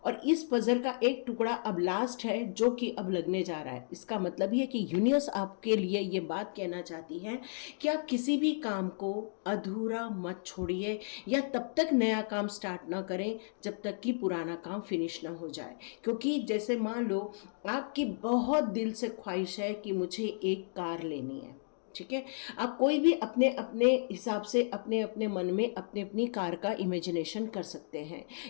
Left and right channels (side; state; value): right; silent; digital silence